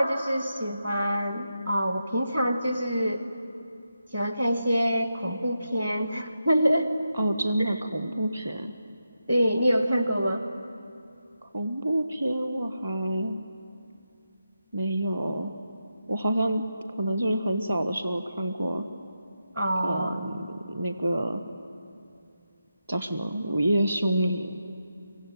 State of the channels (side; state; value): both; inverted; correlation -0.87